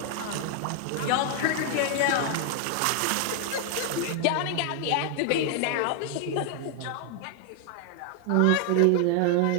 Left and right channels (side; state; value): both; different; correlation 0.00